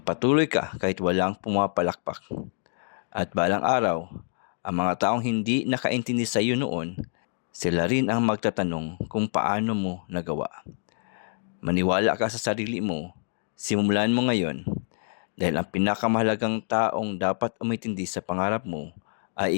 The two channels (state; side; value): silent; right; digital silence